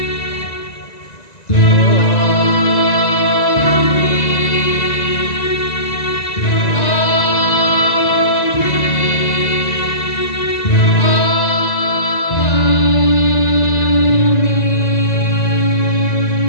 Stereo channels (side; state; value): right; late; 1.9 ms